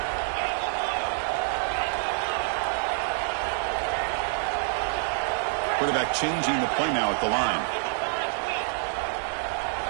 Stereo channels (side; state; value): left; silent; digital silence